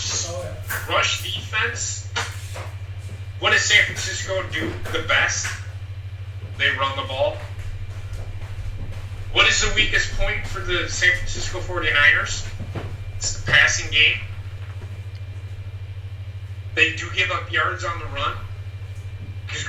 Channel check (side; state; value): both; identical; correlation 1.00